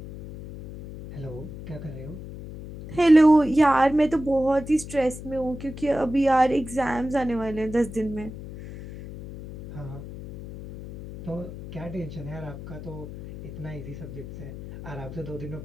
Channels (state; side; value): noise; left; hum, 12 dB below the sound